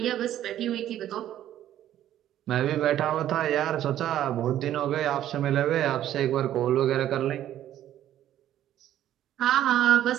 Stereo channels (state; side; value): quieter; left; 12.0 dB